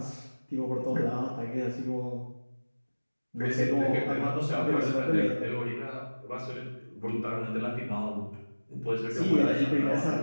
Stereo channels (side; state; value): both; inverted; correlation -1.00